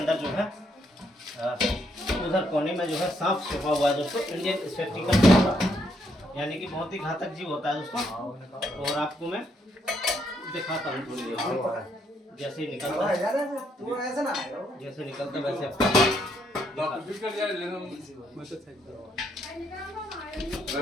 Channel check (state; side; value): normal; both; correlation 0.74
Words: जो है उधर कोने में जो है सांप छिपा हुआ है दोस्तों। इंडियन स्पेक्टिकल कोबरा, यानी कि बहुत ही घातक जीव होता है दोस्तों। और आपको मैं दिखाता हूँ थोड़ी देर, जैसे ही निकलता है वैसे